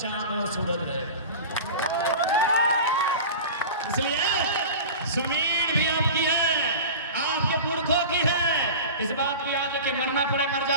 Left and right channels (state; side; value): inverted; both; correlation -0.33